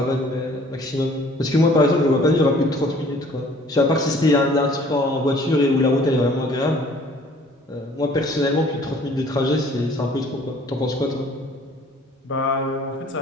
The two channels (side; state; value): both; normal; correlation 0.55